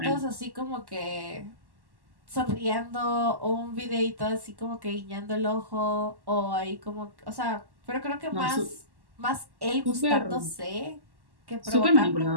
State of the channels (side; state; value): left; late; 1.1 ms